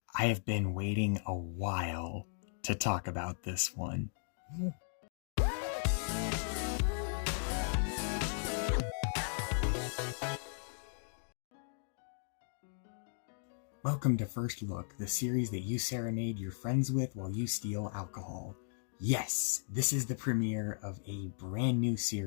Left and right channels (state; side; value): silent; right; digital silence